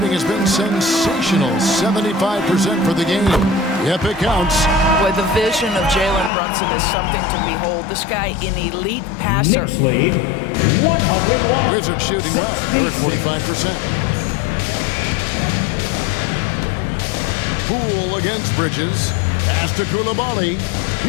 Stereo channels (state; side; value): drops out; right; at 6.3 s